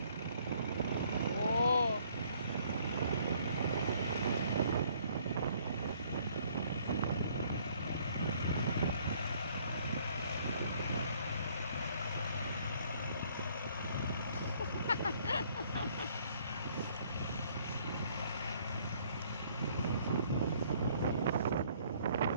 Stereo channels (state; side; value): inverted; both; correlation -0.62